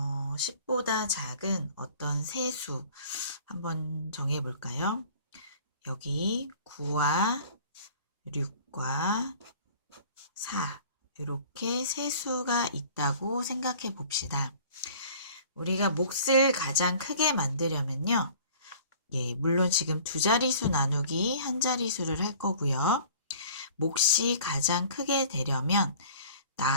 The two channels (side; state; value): both; inverted; correlation -0.49